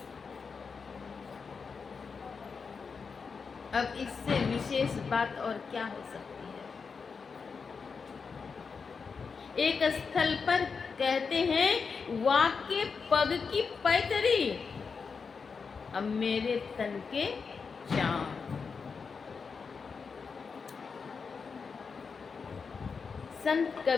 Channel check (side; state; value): right; quieter; 5.3 dB